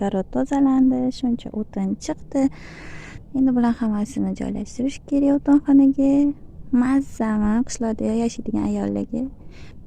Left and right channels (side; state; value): both; identical; correlation 1.00